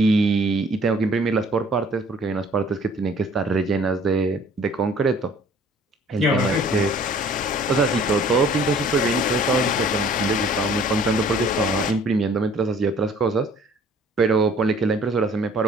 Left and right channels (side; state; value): both; normal; correlation 0.54